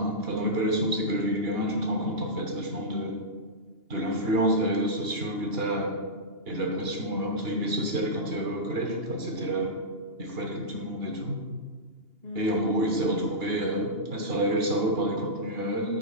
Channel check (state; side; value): late; left; 2.8 ms